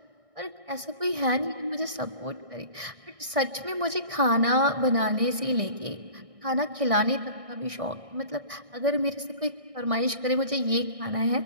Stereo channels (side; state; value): left; late; 1.6 ms